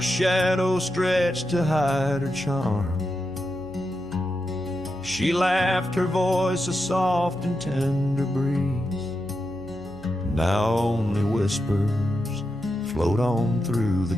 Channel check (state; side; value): noise; left; hum, 21 dB below the sound